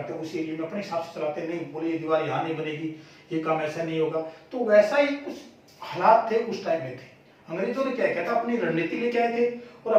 हैं उसी एरिया में अपने हिसाब से चलाते हैं। नहीं, बोले ये दीवार यहाँ नहीं बनेगी, ये काम ऐसा नहीं होगा। तो वैसा ही कुछ हालात थे उस टाइम में थे। अंग्रेजों ने क्या किया था, अपनी रणनीति लेके आए थे, और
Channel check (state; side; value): identical; both; correlation 1.00